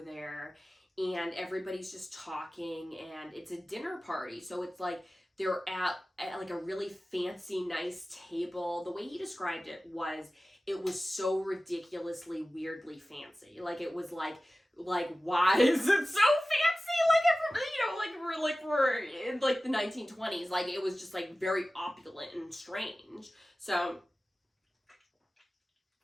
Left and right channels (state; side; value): normal; both; correlation 0.96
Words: there, and everybody's just talking, and it's a dinner party. So it's like they're at like a really fancy, nice table. The way he described it was so ridiculously weirdly fancy. Like it was like why is it so fancy? Like you know, like we're in like the 1920s. Like it was just like very opulent and strange. So